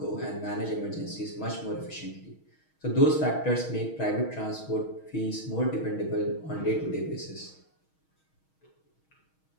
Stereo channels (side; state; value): right; late; 6.3 ms